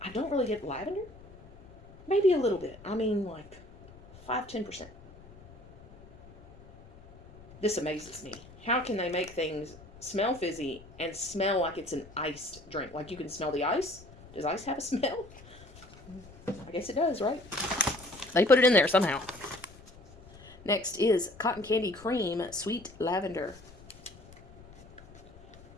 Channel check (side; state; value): left; noise; rumble, 21 dB below the sound